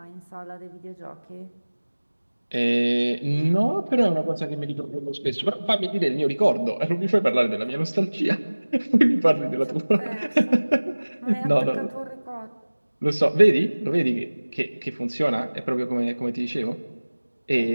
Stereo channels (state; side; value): inverted; both; correlation -1.00